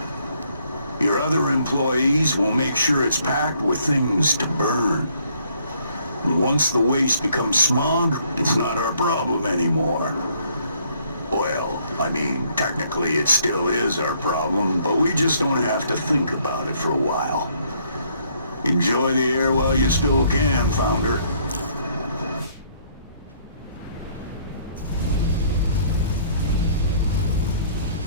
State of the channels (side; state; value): both; inverted; correlation -0.65